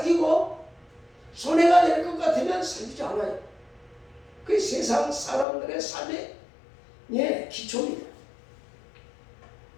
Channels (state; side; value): drops out; right; at 5.5 s